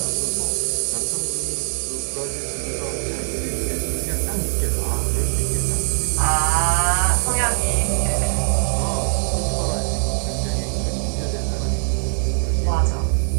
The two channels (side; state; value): left; silent; 58 dB below the other